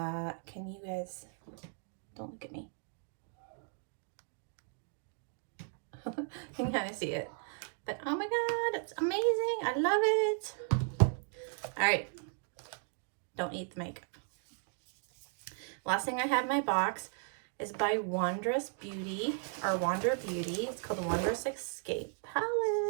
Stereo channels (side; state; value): left; silent; 54 dB below the other